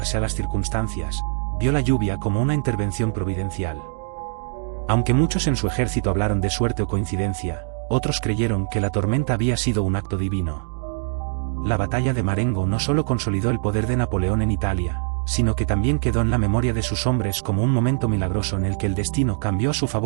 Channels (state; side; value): silent; left; digital silence